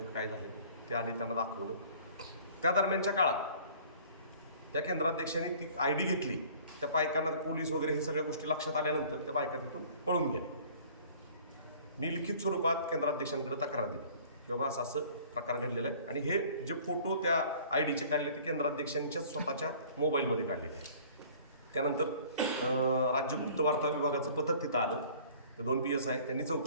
काय झालं ते आले, त्यांना दाखवलं. त्या दरम्यानच्या काळात त्या केंद्राध्यक्षांनी ती ID घेतली. त्या बायकांना पोलीस वगैरे हे सगळ्या गोष्टी लक्षात आल्यानंतर त्या बायका तिथून पळून गेल्या. मी लिखित स्वरूपात केंद्राध्यक्षांकडे तक्रार दिली की बाबा असं प्रकार घडलेला आहे आणि हे जे फोटो त्या IDचे काढले ते केंद्राध्यक्षांच्या स्वतःच्या मोबाईलमध्ये काढलेले आहे. त्यानंतर राज्य गुप्त वार्ता विभागाचं पथक तिथं आलं. ते 2 PSI त्यांनी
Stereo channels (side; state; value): both; inverted; correlation -0.51